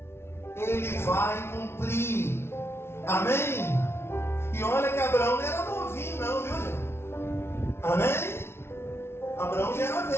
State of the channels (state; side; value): late; right; 0.12 ms